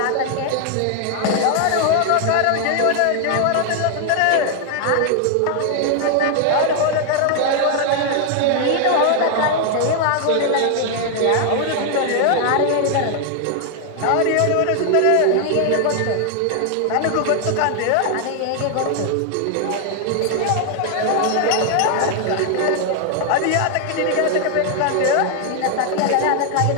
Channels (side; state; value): both; different; correlation 0.00